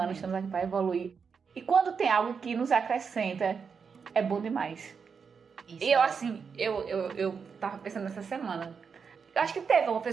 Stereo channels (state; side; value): quieter; left; 5.9 dB